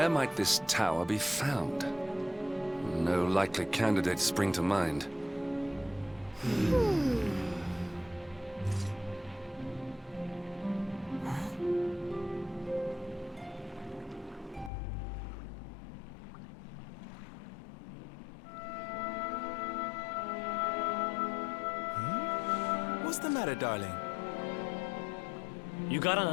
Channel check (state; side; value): drops out; right; at 14.7 s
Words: might this tower be found? No likely candidates spring to mind. What's the matter, darling? You got an